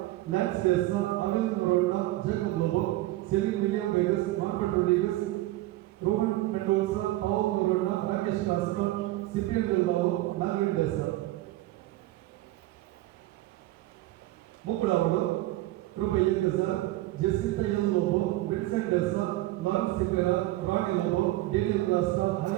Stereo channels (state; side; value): quieter; left; 17.2 dB